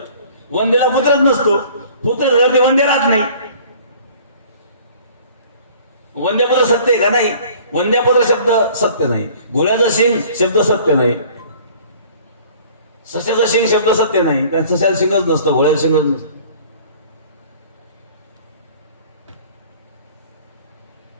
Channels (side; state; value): both; inverted; correlation -0.50